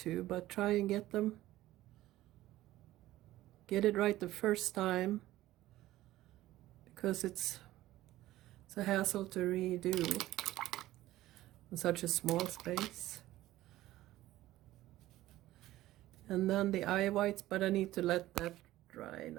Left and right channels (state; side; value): quieter; left; 15.6 dB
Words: but try and get it right the first time, because it's a hassle to redo in such a small space. And then the eye whites, but I need to let that dry